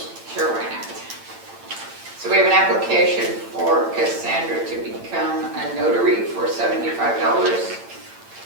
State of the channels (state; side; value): late; left; 8.8 ms